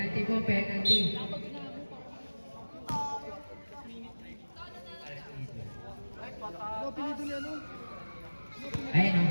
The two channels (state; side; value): inverted; both; correlation -1.00